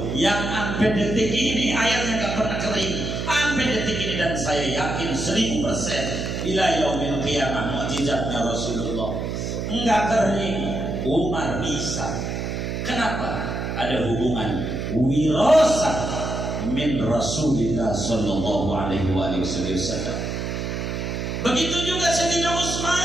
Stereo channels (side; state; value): right; noise; hum, 3 dB below the sound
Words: yang sampai detik ini airnya nggak pernah kering, sampai detik ini, dan saya yakin 1000% ila yaumil qiyamah mukjizatnya Rasulullah. Nggak kering, Umar bisa. Kenapa? Ada hubungan wirasah min Rasulillah sallallahu alaihi wasallam. Begitu juga Sayyidina